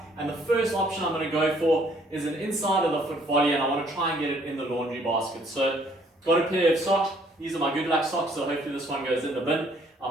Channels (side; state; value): both; normal; correlation 0.63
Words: And the first option I'm going to go for is an inside of the foot volley, and I want to try and get it in the laundry basket. So got a pair of socks. These are my good luck socks, so hopefully this one goes in the bin. I'm